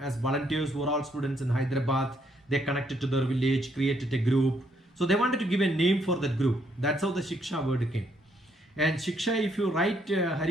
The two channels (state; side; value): normal; both; correlation 0.72